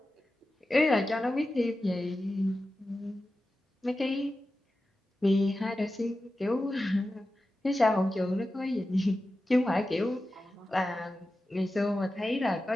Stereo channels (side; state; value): both; normal; correlation 0.93